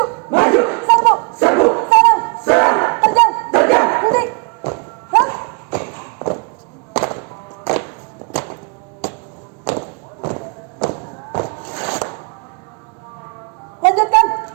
Maju, serbu, serbu, serang, serang, terjang, terjang. henti, gerak. Lanjutkan.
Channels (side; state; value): left; quieter; 33.9 dB